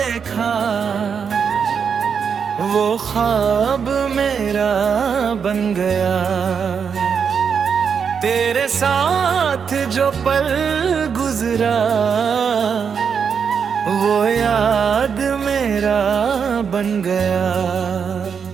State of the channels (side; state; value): left; quieter; 6.6 dB